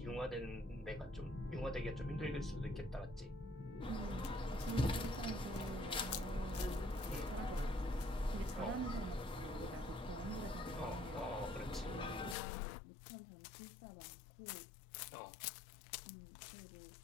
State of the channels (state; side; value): drops out; right; at 12.4 s